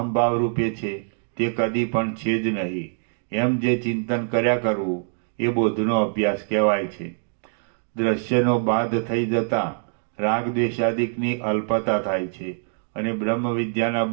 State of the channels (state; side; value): silent; left; 63 dB below the other